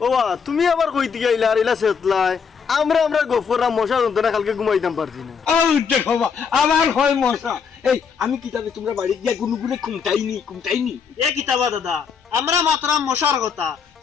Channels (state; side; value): quieter; right; 6.3 dB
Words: ও বা তুমি আবার কইতে গেলা আর ইলা সেতলাই আমরা গফররা মশা যন্ত্রণা কালকে ঘুমাইতাম পারছি না ও দেখো আমার হয় মশা এই আমি কিতাবে তোমরা বাড়ি গিয়া গুনুগুনে কুমটাইনি এ কিতাবা দাদা আমরা মাত্রা মশার কথা